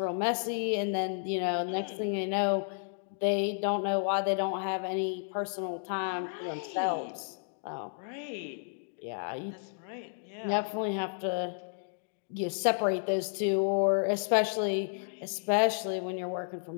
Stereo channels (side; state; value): right; silent; digital silence